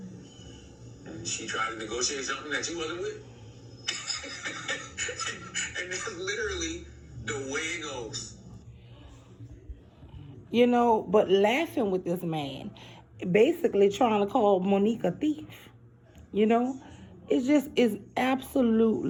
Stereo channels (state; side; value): identical; both; correlation 1.00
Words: And she tried to negotiate something that she wasn't with. And that's literally the way it goes. But laughing with this man, basically trying to call Monique a thief. It just is